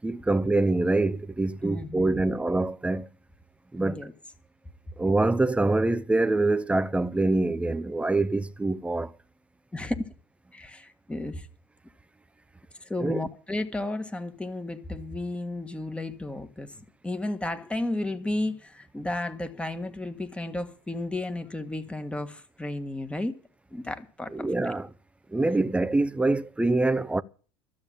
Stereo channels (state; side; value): normal; both; correlation 0.94